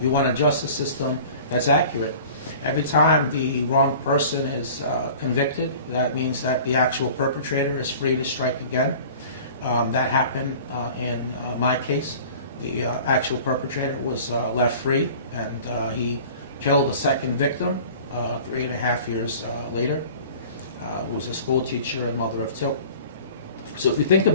want a justice system that's accurate. Every time the wrong person is convicted, that means that the actual perpetrator is free to strike again. That happened in my case. The actual perpetrator was left free, and he killed a second victim 3.5 years later. Who was a school teacher and mother of two. So if you think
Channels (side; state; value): both; inverted; correlation -0.43